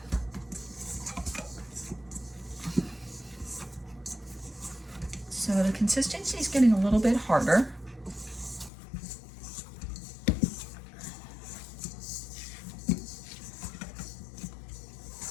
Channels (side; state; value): right; drops out; at 8.7 s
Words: the consistency is getting a little bit harder.